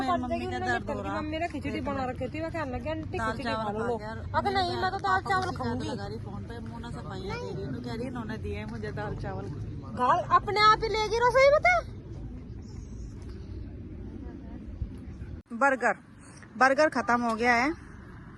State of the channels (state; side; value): identical; both; correlation 1.00